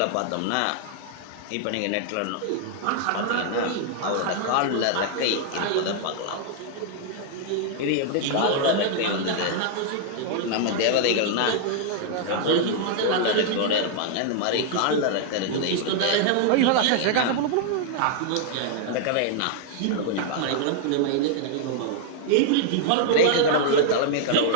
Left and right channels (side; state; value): both; different; correlation 0.00